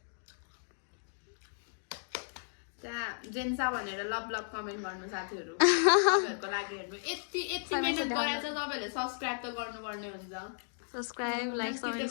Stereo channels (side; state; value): right; silent; digital silence